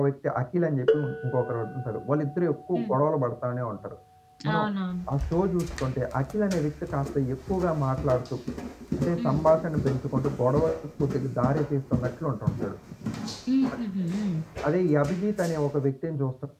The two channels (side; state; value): both; identical; correlation 1.00